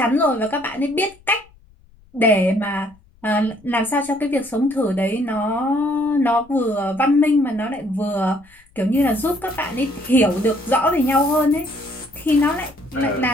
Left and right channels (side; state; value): left; noise; rumble, 29 dB below the sound